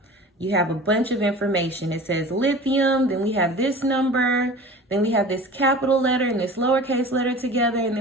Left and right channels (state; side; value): normal; both; correlation 0.39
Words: you have a bunch of information. It says lithium, then we have this number, then we have this capital letter and this lowercase letter together, and